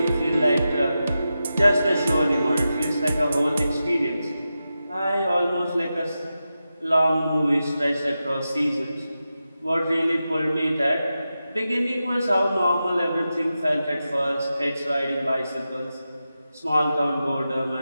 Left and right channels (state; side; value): inverted; both; correlation -0.91